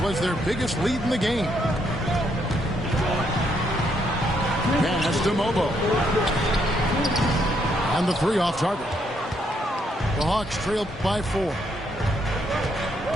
was their biggest lead in the game. Pass to Mobo. And the 3 off target. The Hawks trail by 4.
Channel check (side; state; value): both; normal; correlation 0.74